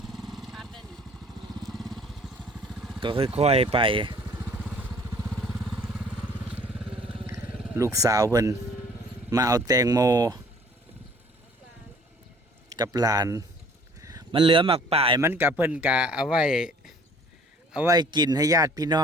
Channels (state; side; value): normal; both; correlation 0.54